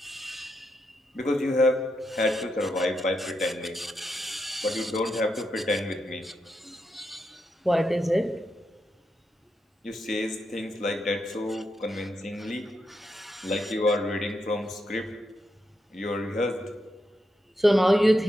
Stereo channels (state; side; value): normal; both; correlation 0.84